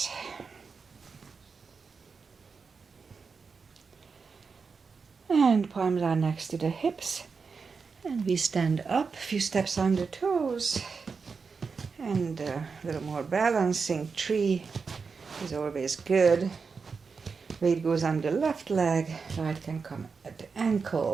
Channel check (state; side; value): quieter; left; 5.1 dB